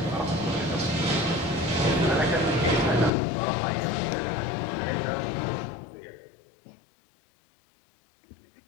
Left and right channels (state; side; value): drops out; right; at 3.1 s